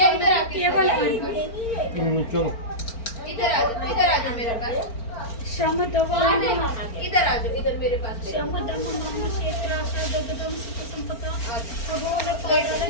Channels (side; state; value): right; late; 4.4 ms